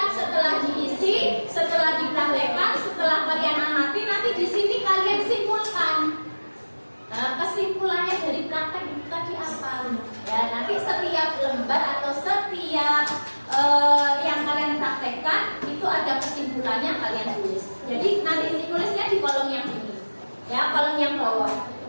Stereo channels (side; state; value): both; inverted; correlation -1.00